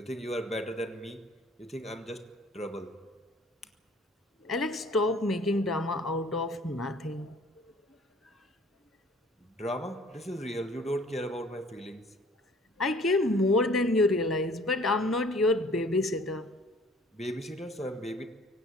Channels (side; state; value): both; normal; correlation 0.53